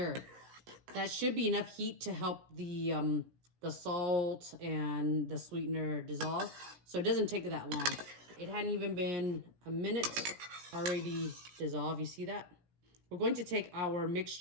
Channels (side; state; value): left; late; 17 ms